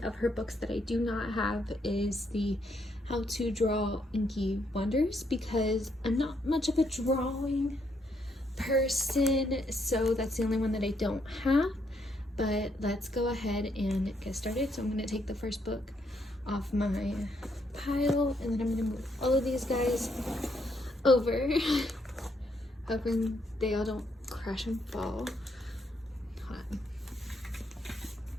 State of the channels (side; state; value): both; normal; correlation 0.75